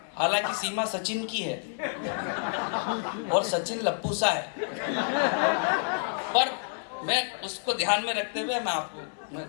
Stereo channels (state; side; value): silent; right; 59 dB below the other